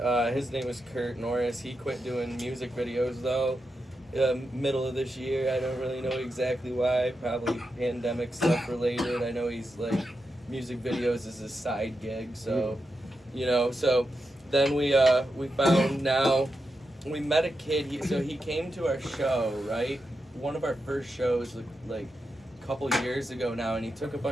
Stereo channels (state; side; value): normal; both; correlation 0.87